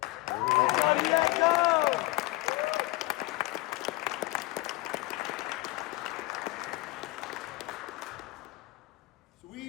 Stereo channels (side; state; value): right; quieter; 21.0 dB